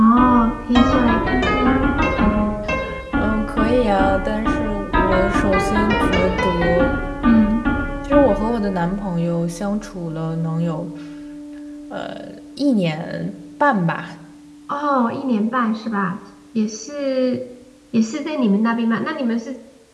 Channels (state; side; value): identical; both; correlation 1.00